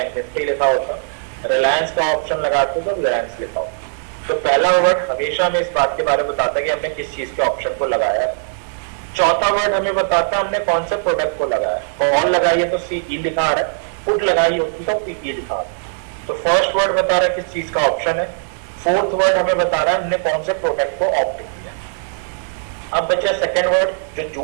निफ्टी लिखा होता, रिलायंस का ऑप्शन लगाते तो रिलायंस लिखा होता। तो पहला वर्ड हमेशा हमें इस बात के बारे में बताता है कि हमने किस चीज के ऑप्शन को लगाया है। चौथा वर्ड हमें बताता है हमने कौन से प्रोडक्ट को लगाया। कॉल लगाई है तो सीई लिखा आ रहा है, पुट लगाई होती तो पीई लिखा आ रहा है। तो फर्स्ट वर्ड बता रहा है किस चीज का ऑप्शन है। फोर्थ वर्ड हमें बता रहा है हमने कौन से प्रोडक्ट को ऑप्ट किया। अब बचा सेकंड वर्ड जो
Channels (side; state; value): left; silent; digital silence